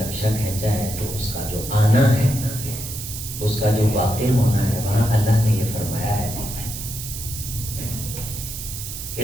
کھینچا ہے تو اس کا جو آنا ہے، اس کا جو واقع ہونا ہے، وہاں اللہ نے یہ فرمایا ہے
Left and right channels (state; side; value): noise; right; hiss, 8 dB below the sound